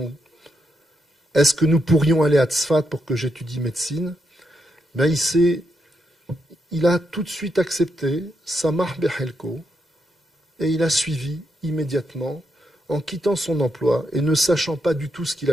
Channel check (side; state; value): both; normal; correlation 0.81